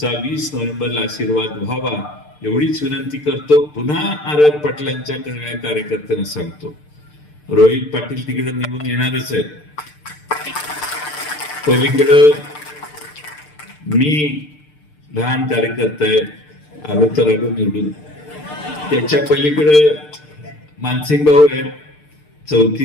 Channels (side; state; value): right; late; 6.7 ms